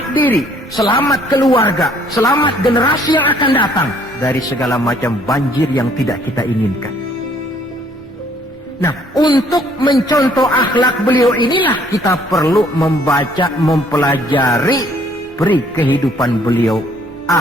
diri, selamat keluarga, selamat generasi yang akan datang dari segala macam banjir yang tidak kita inginkan. Nah, untuk mencontoh akhlak beliau inilah kita perlu membaca, mempelajari peri kehidupan beliau.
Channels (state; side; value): normal; both; correlation 0.62